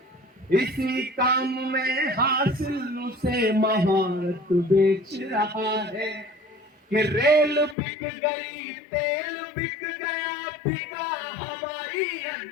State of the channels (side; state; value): right; drops out; at 7.8 s